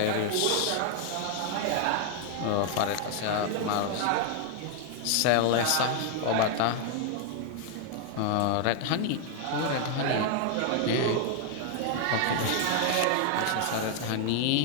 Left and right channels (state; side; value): different; both; correlation 0.00